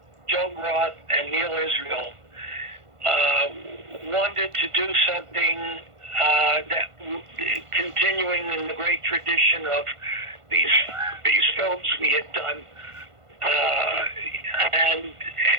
Joe Roth and Neil Israel, wanted to do something that, continuing in the great tradition of these films we had done,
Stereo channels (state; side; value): late; left; 1.5 ms